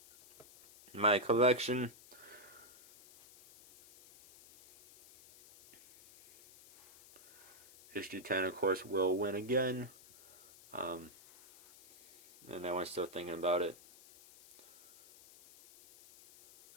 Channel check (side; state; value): left; noise; hiss, 22 dB below the sound